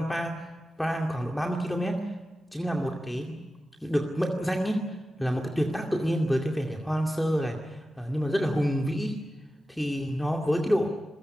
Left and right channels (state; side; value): normal; both; correlation 0.93